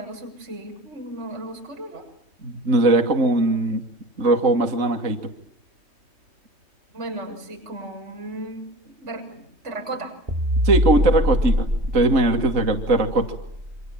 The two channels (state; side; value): late; left; 3.2 ms